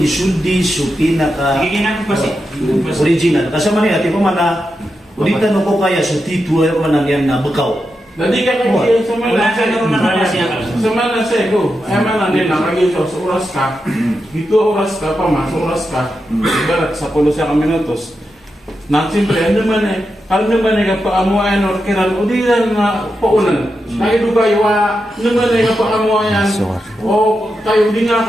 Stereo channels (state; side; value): normal; both; correlation 0.88